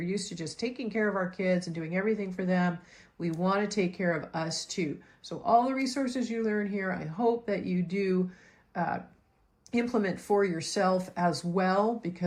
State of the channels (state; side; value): identical; both; correlation 1.00